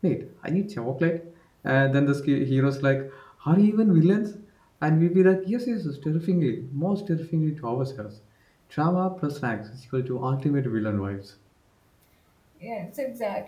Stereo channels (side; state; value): both; identical; correlation 1.00